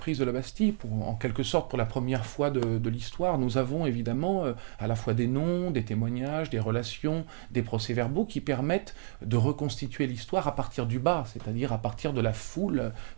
de la Bastille, en quelque sorte pour la première fois de l'histoire, nous avons évidemment à la fois des noms, des témoignages, des relations, des procès-verbaux qui permettent de reconstituer l'histoire à partir du bas, c'est-à-dire à partir de la foule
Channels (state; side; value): silent; left; digital silence